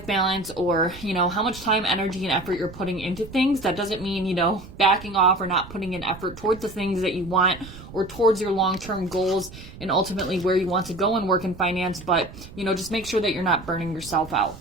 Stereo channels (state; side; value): noise; right; rumble, 16 dB below the sound